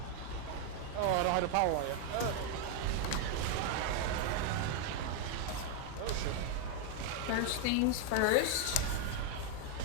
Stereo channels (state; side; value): different; both; correlation 0.00